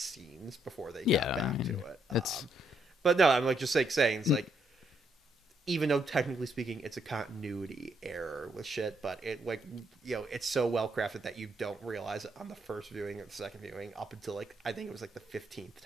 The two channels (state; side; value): normal; both; correlation 0.74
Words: before they got back to it. But no, I'm like just like saying, it's like, even though technically speaking it's a continuity error with shit, but it, like, you know, it's so well crafted that you don't realize it on the first viewing or the second viewing up until like, I think it was like the 15th